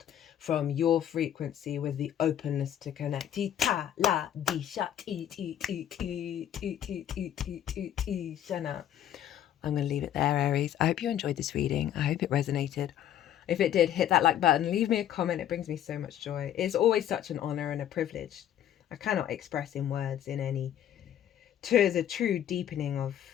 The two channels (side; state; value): right; quieter; 10.8 dB